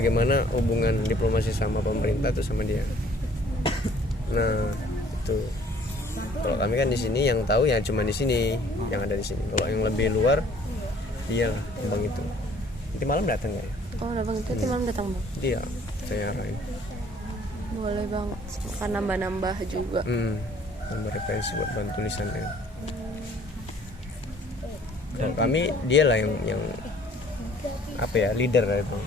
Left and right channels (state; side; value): normal; both; correlation 0.56